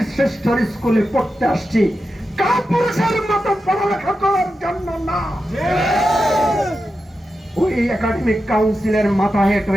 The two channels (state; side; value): normal; both; correlation 0.90